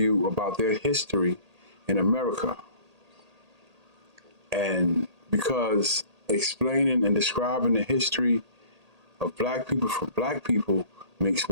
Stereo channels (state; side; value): late; left; 1.8 ms